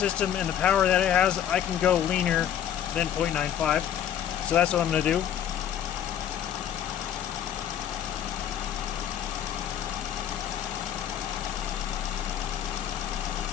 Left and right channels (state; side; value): quieter; right; 10.0 dB